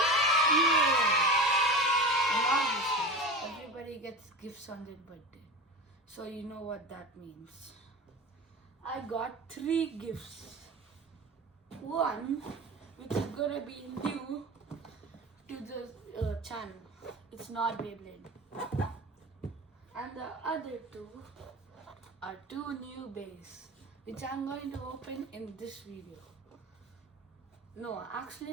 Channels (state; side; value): normal; both; correlation 0.30